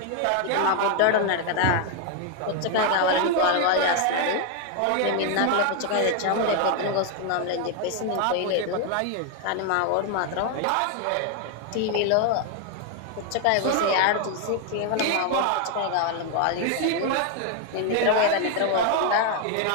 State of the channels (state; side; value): different; both; correlation 0.00